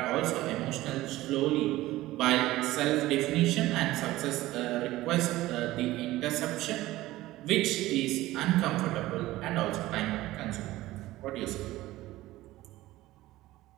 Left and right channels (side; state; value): left; quieter; 17.0 dB